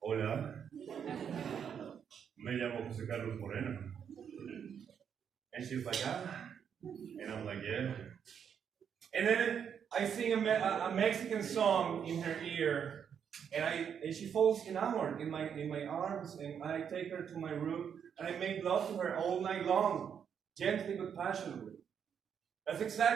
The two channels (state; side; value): quieter; left; 7.8 dB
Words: hola, me llamo Jose Carlos Moreno. And she's like, ah. And I'm like, yeah. And then I sing a Mexican song in her ear, and she falls enamored in my arms, and I take her to my room, and I make love to her all night long, gently but passionately. That's